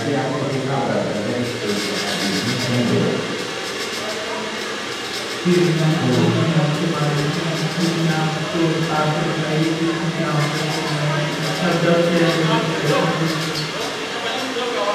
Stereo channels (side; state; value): both; identical; correlation 1.00